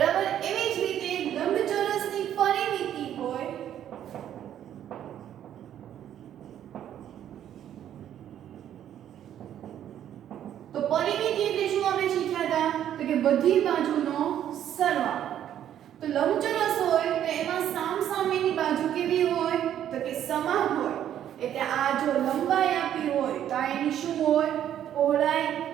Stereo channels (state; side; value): quieter; left; 10.6 dB